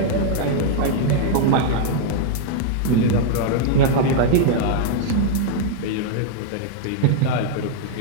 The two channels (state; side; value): different; both; correlation -0.01